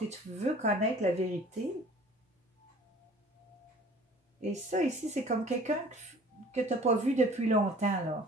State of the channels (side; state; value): both; normal; correlation 0.49